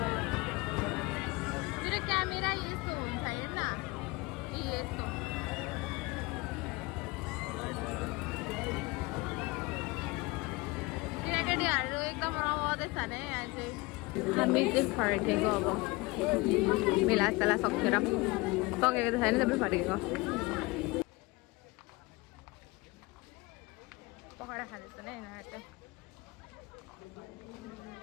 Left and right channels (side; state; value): right; quieter; 23.7 dB